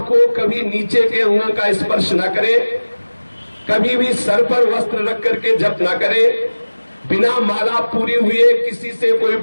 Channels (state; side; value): inverted; both; correlation -1.00